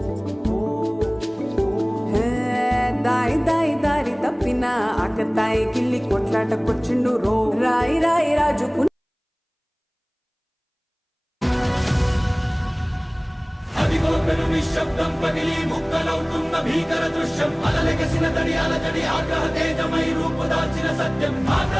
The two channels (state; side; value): identical; both; correlation 1.00